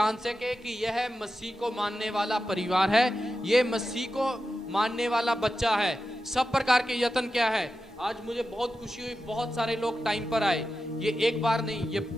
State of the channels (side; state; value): both; normal; correlation 0.91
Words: सके कि यह मसीह को मानने वाला परिवार है, ये मसीह को मानने वाला बच्चा है। सब प्रकार के यत्न क्या है? आज मुझे बहुत खुशी हुई, बहुत सारे लोग टाइम पर आए। ये एक बार नहीं, ये